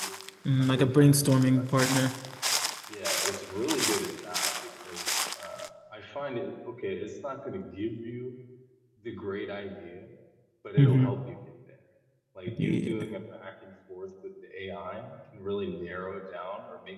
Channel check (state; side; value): identical; both; correlation 1.00